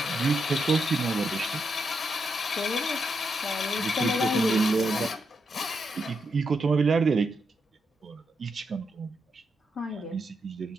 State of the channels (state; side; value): normal; both; correlation 0.82